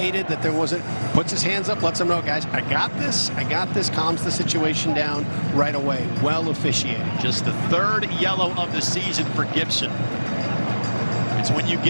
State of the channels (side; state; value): both; inverted; correlation -1.00